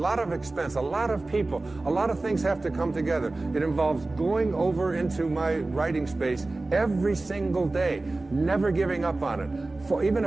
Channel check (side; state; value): left; quieter; 3.1 dB